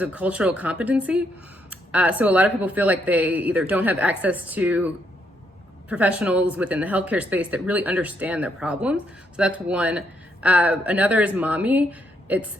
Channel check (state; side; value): normal; both; correlation 0.75